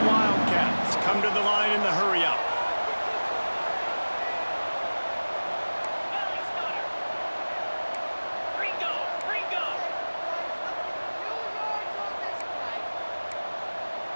Wildcats come to the line in the hurry-up.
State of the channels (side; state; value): both; inverted; correlation -1.00